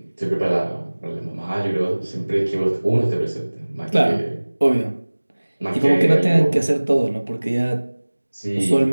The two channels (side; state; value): both; inverted; correlation -1.00